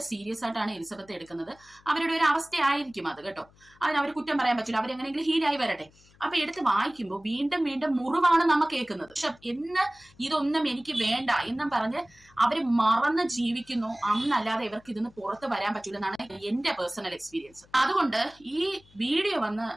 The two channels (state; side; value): noise; left; hum, 28 dB below the sound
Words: സീരിയസ് ആയിട്ടാണ് എലിസബത്ത് എടുക്കുന്നത്. അവരുടെ ഒരു അവസ്ഥയായിരിക്കും അത് കേട്ടോ. അതിന് അവർ കുറ്റം പറയാൻ പറ്റില്ല, അവരെങ്ങനെയെങ്കിലും ഹീലായി വരട്ടെ. അപ്പൊ എടുത്ത് വായിക്കുമ്പോൾ വീണ്ടും വീണ്ടും മുറിവാണ് നമ്മൾ കേൾക്കുന്നത്. പക്ഷെ ഇതൊന്നും എനിക്ക് വേണ്ട എന്നും പറഞ്ഞ് അവര് മറന്ന് ജീവിക്കുന്നു. അന്നല്ലാതെ ഇവർക്ക് ഇതിന്ന് പുറത്ത് വരാൻ പറ്റൂല എന്നാണ് എന്റെ പേഴ്സണൽ എക്സ്പീരിയൻസ്. അതുകൊണ്ട് ഈ വീഡിയോ വന്ന്